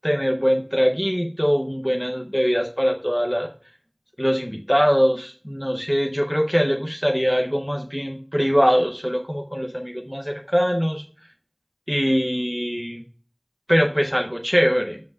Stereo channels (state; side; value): identical; both; correlation 1.00